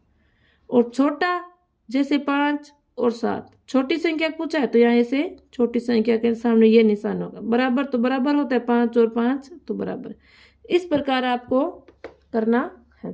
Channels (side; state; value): both; identical; correlation 1.00